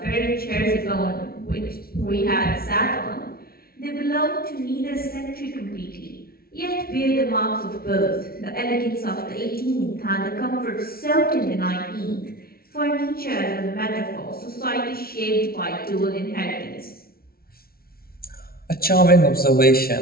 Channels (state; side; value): late; right; 0.44 ms